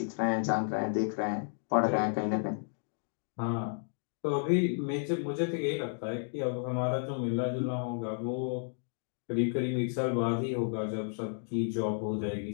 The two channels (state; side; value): silent; right; digital silence